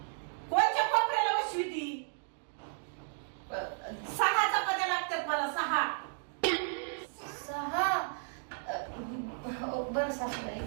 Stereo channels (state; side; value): silent; left; digital silence